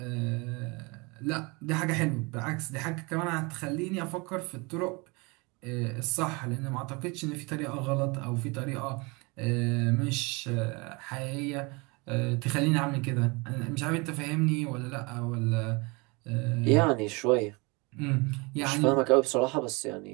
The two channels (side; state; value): left; quieter; 27.7 dB